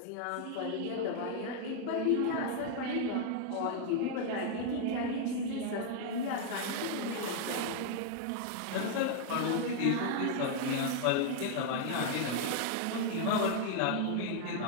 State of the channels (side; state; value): both; different; correlation 0.00